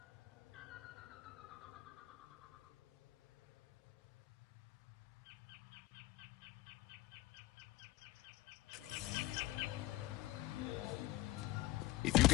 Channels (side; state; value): right; quieter; 18.5 dB